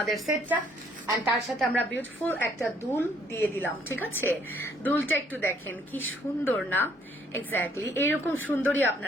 সেটটা। এন্ড তার সাথে আমরা বিউটিফুল একটা দুল দিয়ে দিলাম। ঠিক আছে, দুলটা একটু দেখেন কি সুন্দর না? এক্স্যাক্টলি এরকম সুন্দরই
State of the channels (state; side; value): normal; both; correlation 0.65